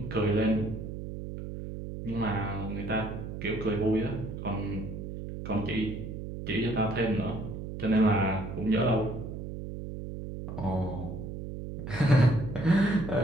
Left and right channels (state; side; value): noise; right; hum, 8 dB below the sound